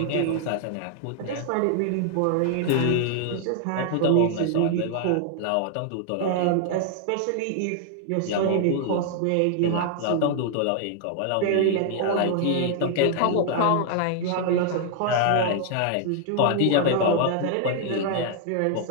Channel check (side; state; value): both; different; correlation 0.00